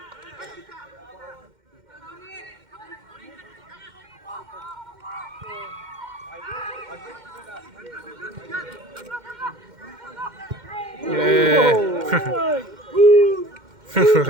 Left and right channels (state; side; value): late; left; 2.1 ms